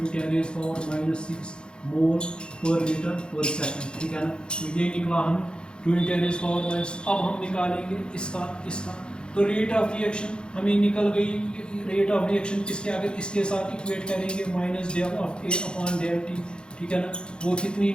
10⁻⁻⁶ मोल पर लीटर पर सेकंड। ठीक है ना, तो ये निकला हमें 2 × 10⁻⁻। अब हम निकालेंगे इसका तो रेट ऑफ रिएक्शन हमें निकल गई। रेट ऑफ रिएक्शन किसके आगे? इसके साथ इक्वेट करेंगे minus del of A upon del T. ठीक है ना, वो कितनी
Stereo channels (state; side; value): late; right; 0.051 ms